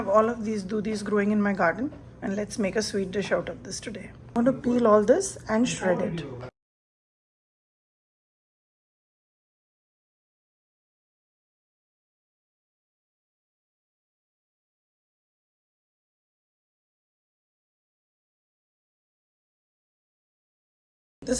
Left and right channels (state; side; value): identical; both; correlation 1.00